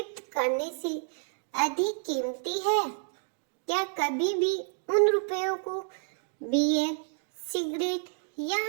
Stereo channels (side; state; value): left; silent; 58 dB below the other